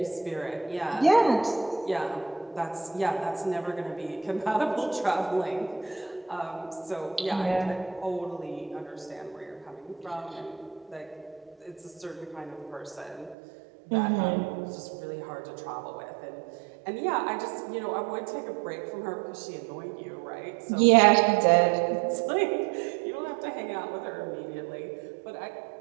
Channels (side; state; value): left; drops out; at 13.4 s